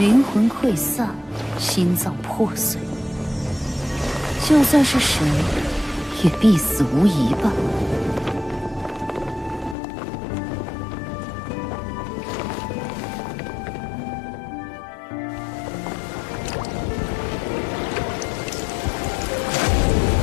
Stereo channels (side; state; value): right; drops out; at 9.8 s